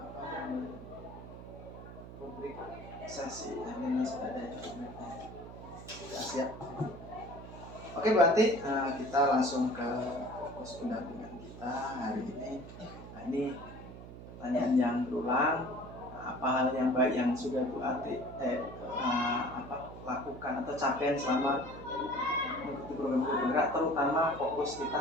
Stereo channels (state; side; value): noise; right; hum, 13 dB below the sound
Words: publik sesi ini sudah ada ya, sudah siap. Oke, berarti kita langsung ke fokus pendampingan kita hari ini. Nah, ini pertanyaan yang berulang. Apa hal yang baik yang sudah Bu Ati lakukan atau capaian selama mengikuti program guru penggerak, terutama fokus